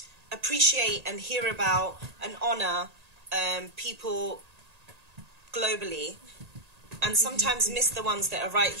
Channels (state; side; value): late; left; 1.8 ms